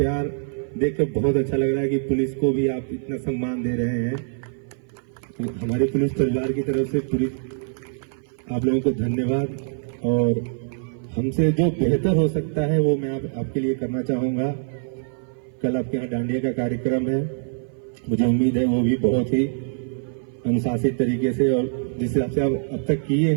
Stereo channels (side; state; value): left; silent; 56 dB below the other